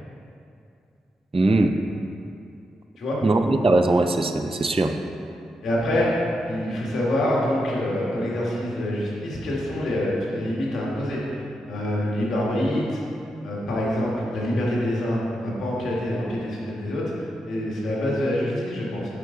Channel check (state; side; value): normal; both; correlation 0.85